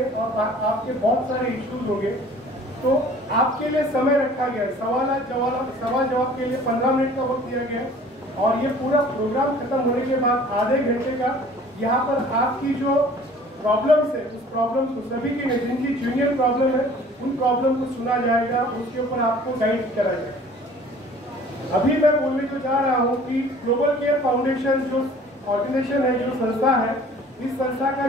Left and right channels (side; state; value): both; normal; correlation 0.50